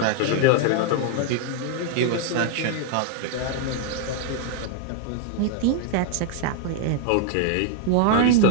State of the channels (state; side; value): different; both; correlation 0.00